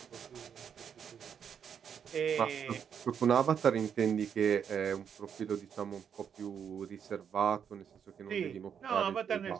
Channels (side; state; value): left; quieter; 7.7 dB